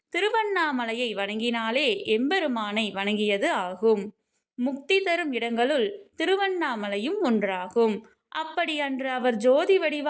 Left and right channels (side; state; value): both; identical; correlation 1.00